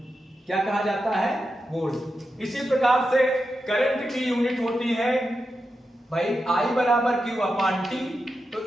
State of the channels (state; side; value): normal; both; correlation 0.89